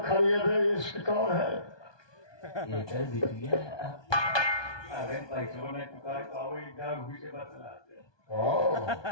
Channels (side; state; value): right; late; 1.2 ms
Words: खरीदे इसकी कौन है ये कर बिटिया अगर पैसों ने चुका तो इधर घुसे बतलाते